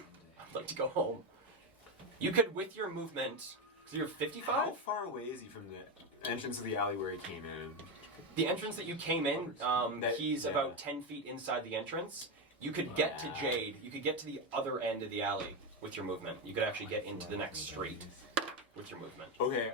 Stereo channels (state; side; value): normal; both; correlation 0.11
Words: like to go home. You could, with your movement, because you're 55? How far away is he from the entrance of the alley where he came in? The entrance that you came in, he's yeah. about 10 feet inside the entrance. You could get to Jade. You could get to the other end of the alley with your movement. You could actually get into the next street with your movement. Okay,